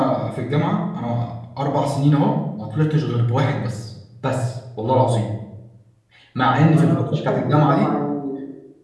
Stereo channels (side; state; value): both; identical; correlation 1.00